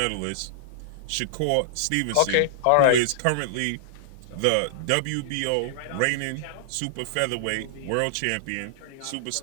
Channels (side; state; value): both; different; correlation -0.01